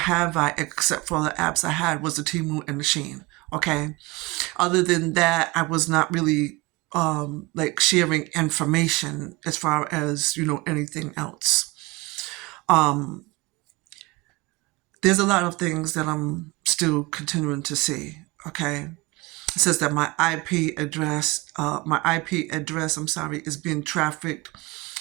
I, except for the apps I had was the Temu and the Shein. Okay. Other than that, I was not really like sharing information as far as anything else. there's a lot of things that I'm still continuing to see. Okay, it says that my IP address, I'm sorry, is being trafficked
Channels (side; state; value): left; quieter; 23.1 dB